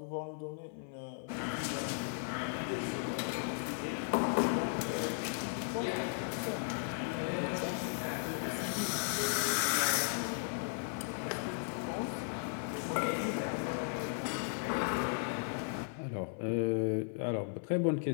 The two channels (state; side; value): silent; right; 54 dB below the other